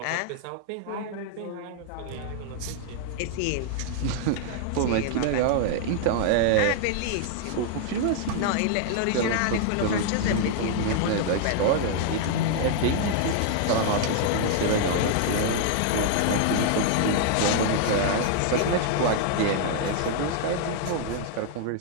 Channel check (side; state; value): both; different; correlation -0.01